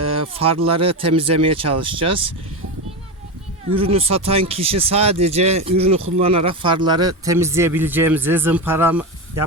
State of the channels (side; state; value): both; normal; correlation 0.18